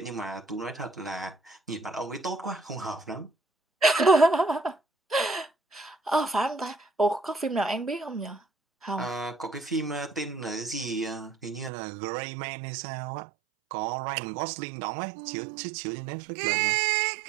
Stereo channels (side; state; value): left; drops out; at 11.7 s